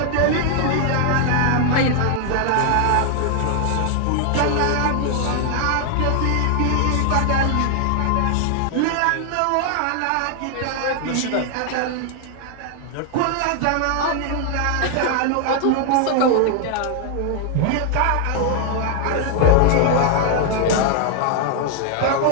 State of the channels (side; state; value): both; different; correlation 0.00